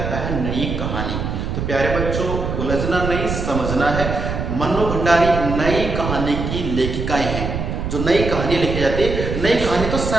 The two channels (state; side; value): noise; right; rumble, 3 dB below the sound